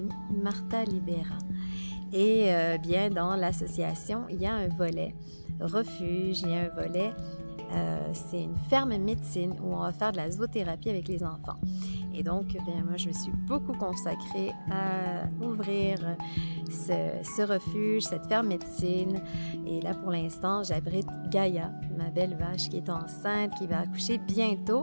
Martha Libera. Et bien dans l'association, il y a un volet refuge, il y a un volet, c'est une ferme médecine où on va faire de la zoothérapie avec les enfants. Et donc, bien, moi, je me suis beaucoup consacrée à ouvrir ce refuge, cette ferme médecine. Et là, pour l'instant, j'abrite Gaïa, ma belle vache qui est enceinte, qui va accoucher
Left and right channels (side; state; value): both; inverted; correlation -1.00